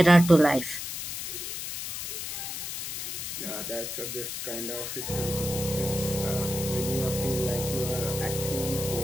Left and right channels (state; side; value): noise; left; hiss, 5 dB below the sound